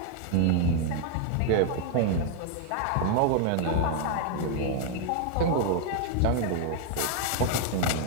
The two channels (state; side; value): different; both; correlation 0.00